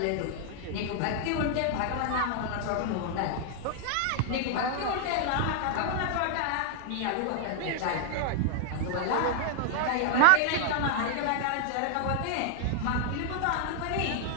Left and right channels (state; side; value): different; both; correlation 0.00